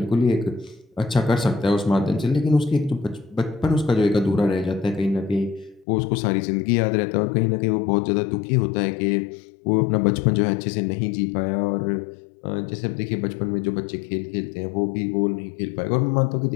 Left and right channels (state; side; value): drops out; right; at 5.9 s